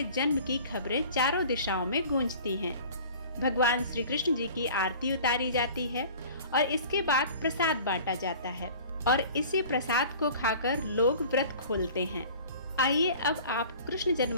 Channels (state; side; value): inverted; both; correlation -0.45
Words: जन्म की खबरें चारों दिशाओं में गूंजती हैं। भगवान श्री कृष्ण जी की आरती उतारी जाती है और इसके बाद प्रसाद बांटा जाता है और इसी प्रसाद को खाकर लोग व्रत खोलते हैं। आइए अब आप कृष्ण